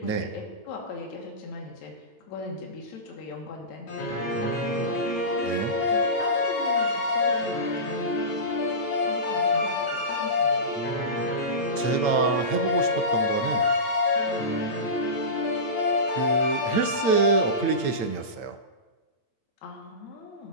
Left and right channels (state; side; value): late; right; 8.8 ms